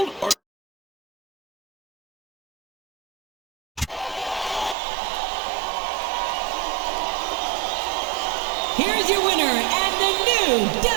or... Here's your winner and the new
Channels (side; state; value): left; drops out; at 4.8 s